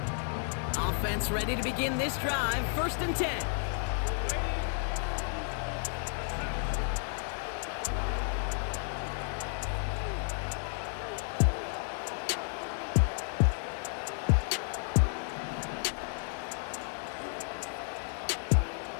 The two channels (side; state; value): right; silent; 56 dB below the other